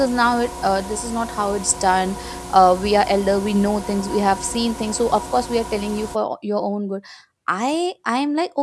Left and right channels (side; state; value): both; identical; correlation 1.00